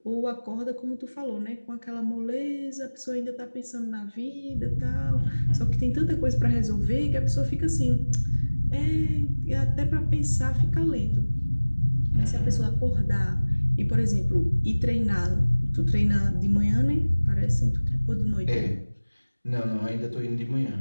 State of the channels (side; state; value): both; inverted; correlation -1.00